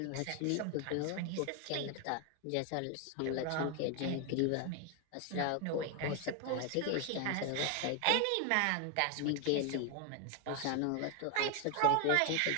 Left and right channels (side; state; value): both; different; correlation 0.01